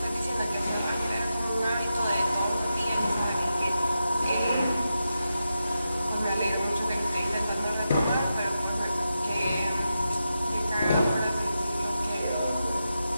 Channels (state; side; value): inverted; both; correlation -0.88